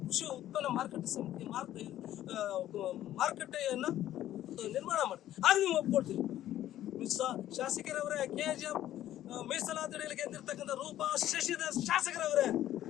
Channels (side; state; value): right; quieter; 12.8 dB